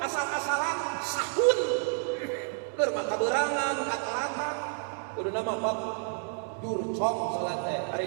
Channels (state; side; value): silent; left; 58 dB below the other